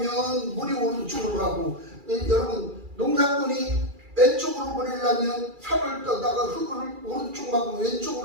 물이 오른쪽으로 가고, 여러분, 농사꾼이 왼쪽으로 보내려면 산을 떠다가 흙을 오른쪽 막으면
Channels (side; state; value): left; late; 2.4 ms